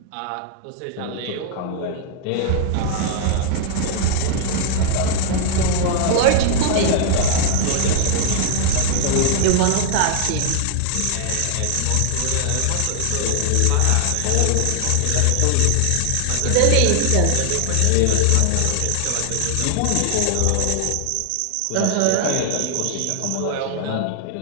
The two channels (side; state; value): both; different; correlation 0.00